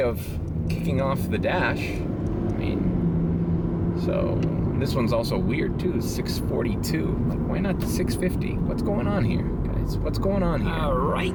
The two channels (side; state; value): both; identical; correlation 1.00